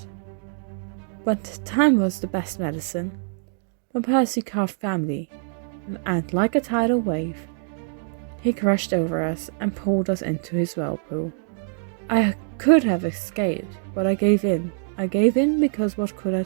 But time was the best medicine. But Percy carved family, and like a tidal wave, he crashed over us and pulled us into his whirlpool. I could have escaped, but I gave in. I gave in because what could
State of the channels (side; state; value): left; silent; digital silence